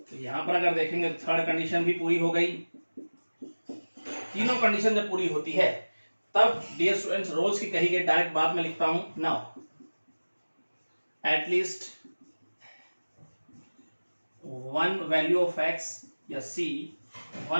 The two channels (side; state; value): both; inverted; correlation -1.00